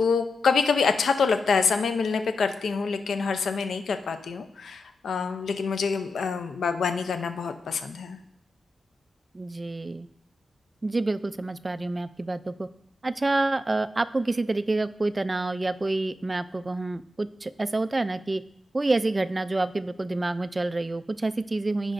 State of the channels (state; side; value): normal; both; correlation 0.88